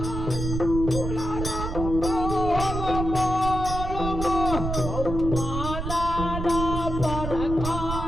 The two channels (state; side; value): noise; right; rumble, 5 dB below the sound